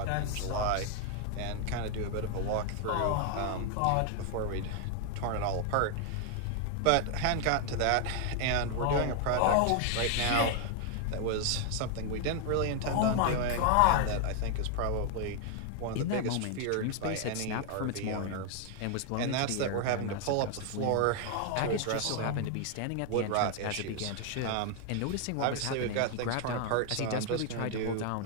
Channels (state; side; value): different; both; correlation 0.00